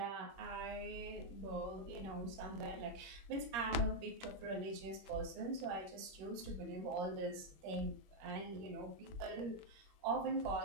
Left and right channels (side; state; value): left; late; 21 ms